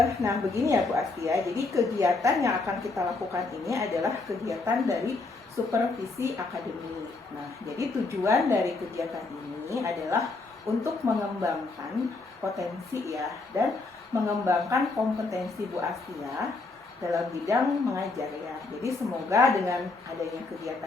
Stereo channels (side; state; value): right; quieter; 3.6 dB